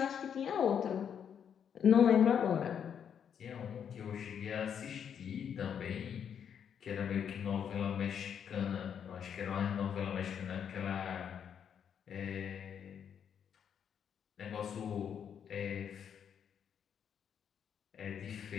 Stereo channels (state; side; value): quieter; right; 8.1 dB